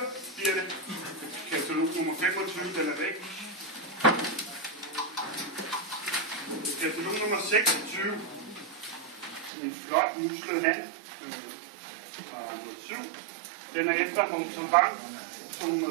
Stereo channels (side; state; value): left; drops out; at 9.5 s